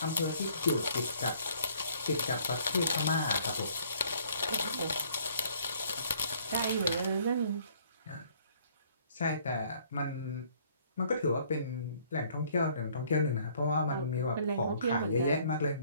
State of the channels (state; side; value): inverted; both; correlation -0.60